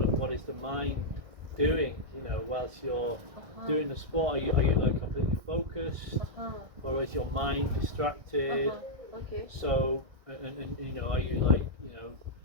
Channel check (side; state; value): left; late; 1.6 ms